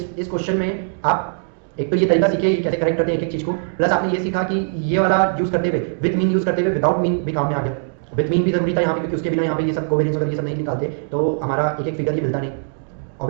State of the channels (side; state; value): left; silent; digital silence